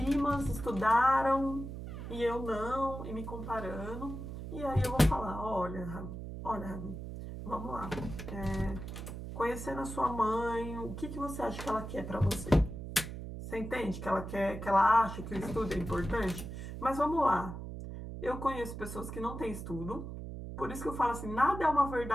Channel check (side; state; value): right; noise; hum, 8 dB below the sound